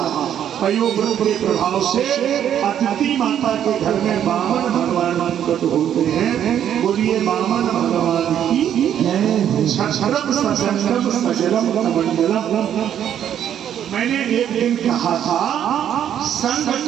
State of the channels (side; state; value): left; quieter; 9.8 dB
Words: है। पयोव्रत के प्रभाव से अदिति माता के घर में वामन भगवान प्रकट होते हैं। बोलिए वामन भगवान की क्षरम सजलम सजलम कमंडलम। मैंने एक दिन कहा था संघ